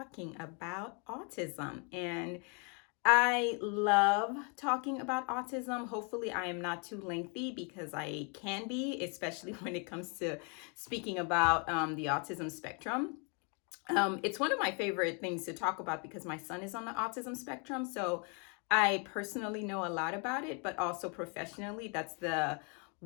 about autism. And I love talking about autism. Hopefully, I am not too lengthy because I can be, especially when it comes to speaking about the autism spectrum. It's one of my favorite things to talk about because my son is on the autism spectrum. So I personally know a lot about it, but also professionally, that's the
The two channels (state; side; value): quieter; right; 36.2 dB